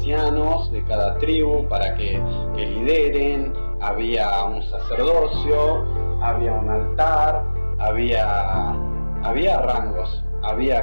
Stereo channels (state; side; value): inverted; both; correlation -1.00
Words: de cada tribu para que lideren, había un sacerdocio, había un altar, había rangos,